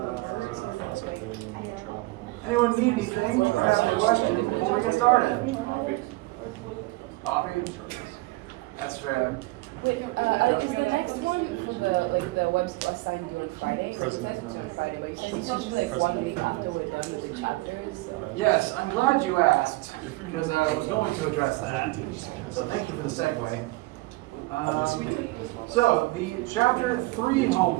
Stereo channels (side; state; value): left; quieter; 21.6 dB